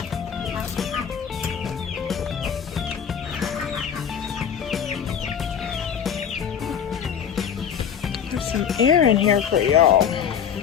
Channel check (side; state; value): right; quieter; 8.0 dB